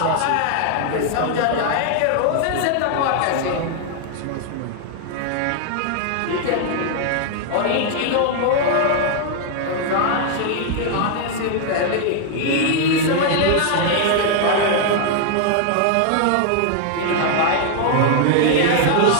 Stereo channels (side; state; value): both; different; correlation 0.00